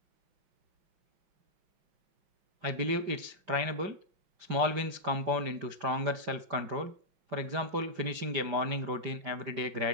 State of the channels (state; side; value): late; left; 5.1 ms